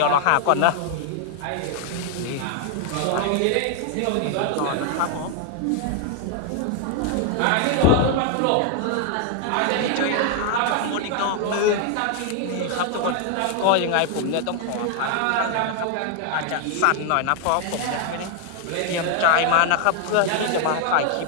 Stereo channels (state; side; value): different; both; correlation 0.00